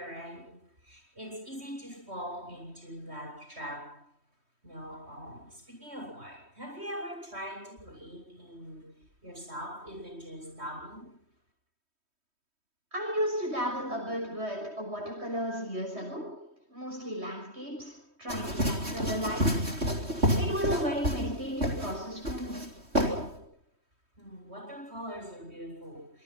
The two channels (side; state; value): left; late; 3.1 ms